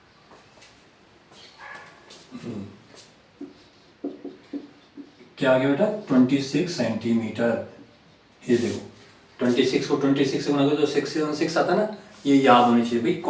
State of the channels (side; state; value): both; identical; correlation 1.00